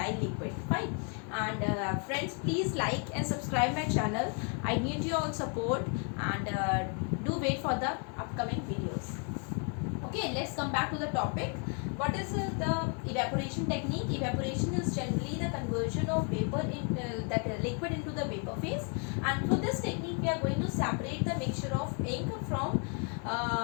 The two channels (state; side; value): quieter; right; 39.3 dB